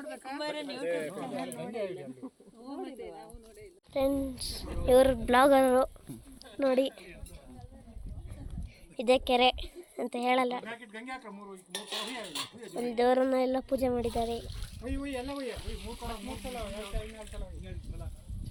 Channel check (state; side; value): identical; both; correlation 1.00